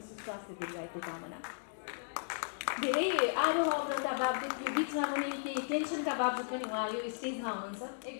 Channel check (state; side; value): silent; right; digital silence